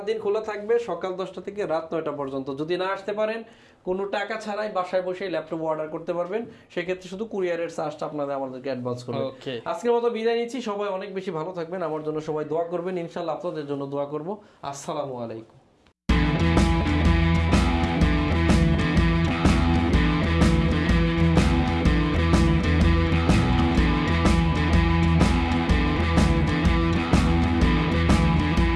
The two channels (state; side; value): identical; both; correlation 1.00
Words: দিন খোলা থাকবে, সকাল 10টা থেকে রাত 9টা পর্যন্ত। যদি না আসতে পারেন কোনো টাকা ছাড়াই বাসায় বসে ল্যাপটপ অর্ডার করতে পারবেন, সেক্ষেত্রে শুধু কুরিয়ারের চার্জটা আপনাদের আমাদেরকে অ্যাডভান্স করবেন। আজকের মতো বিদায় নিচ্ছি, সবাই অনেক বেশি ভালো থাকবেন, আমার জন্য সবাই দোয়া করবেন, ইনশাআল্লাহ আপনাদের জন্য দোয়া করব। আসসালামু আলাইকুম।